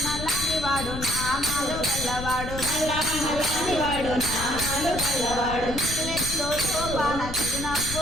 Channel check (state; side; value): noise; left; rumble, 7 dB below the sound